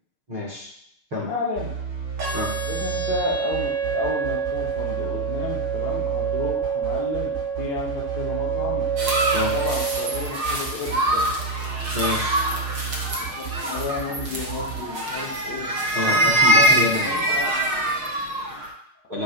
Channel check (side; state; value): left; late; 6.5 ms